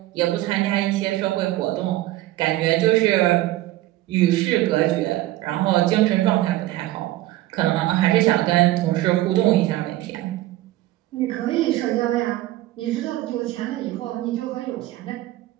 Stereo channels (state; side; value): quieter; left; 16.2 dB